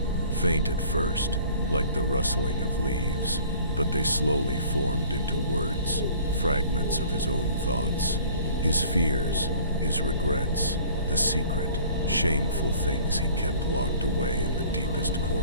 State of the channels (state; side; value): inverted; both; correlation -0.50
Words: Faint at first, like the rustling of leaves, but they slowly formed into words, fragments of his own thoughts. His fears, his regrets, the secret, shameful things he kept locked away in the deepest